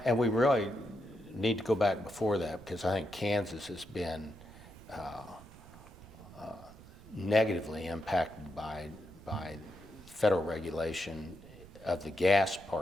and we really need to go back before that, because I think Kansas has been negatively impacted by federal regulation of the gas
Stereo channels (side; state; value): right; noise; rumble, 19 dB below the sound